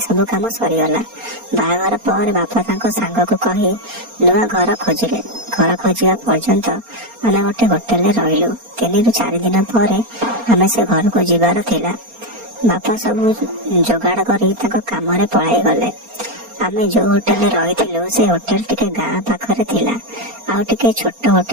काम सरीगला। बाहागर पर बापा तांको सांग को कही नुआ घर खोजिले। घर खोजा पर्यंत आम गोटे होटेल रहिलु। 3 ରୁ 4 दिन पर आम से घर को जीवार थिला। बापा सब जोगाड़ करी तांको काम रे पळाई गले। आमे जो होटेल रही से होटेल टिके गाँ पाखरे थिला। आउ टिके छोट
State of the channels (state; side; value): late; left; 4.3 ms